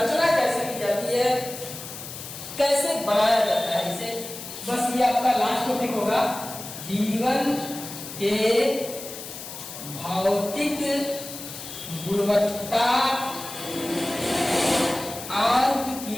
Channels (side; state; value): left; noise; hiss, 11 dB below the sound